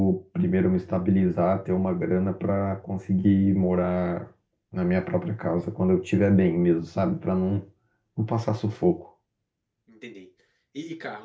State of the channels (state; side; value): identical; both; correlation 1.00